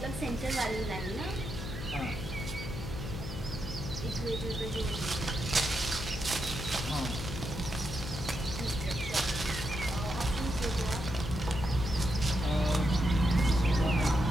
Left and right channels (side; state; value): left; noise; hum, 8 dB below the sound